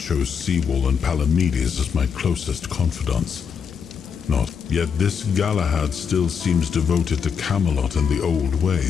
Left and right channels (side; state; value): right; quieter; 6.6 dB